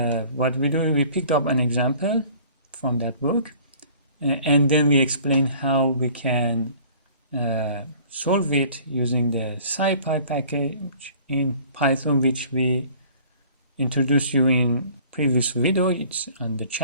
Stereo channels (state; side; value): inverted; both; correlation -0.51